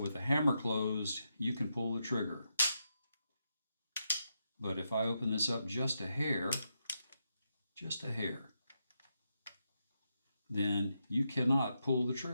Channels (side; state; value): both; inverted; correlation -0.84